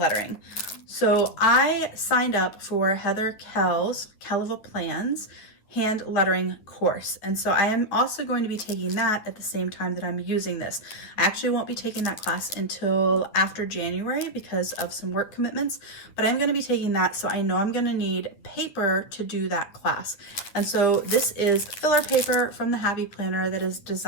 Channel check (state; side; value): late; right; 9.8 ms